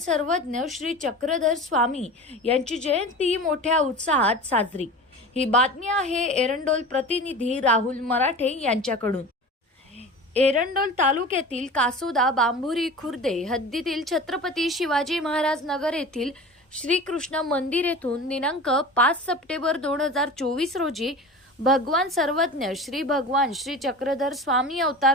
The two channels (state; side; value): normal; both; correlation 0.34